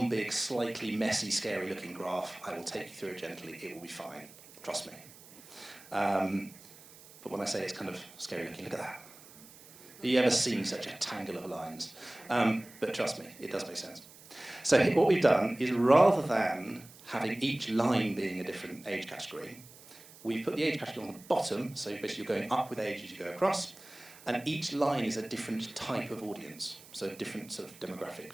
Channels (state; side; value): noise; right; hiss, 21 dB below the sound